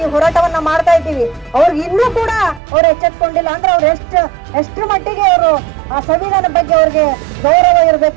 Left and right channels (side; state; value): left; drops out; at 2.6 s